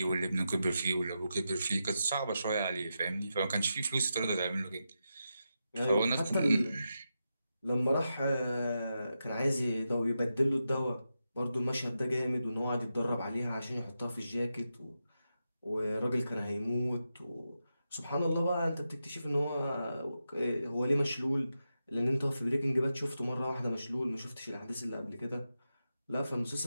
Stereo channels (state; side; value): inverted; both; correlation -0.88